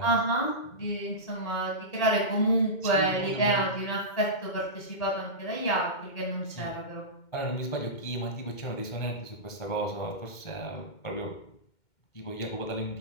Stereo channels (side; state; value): right; late; 2.1 ms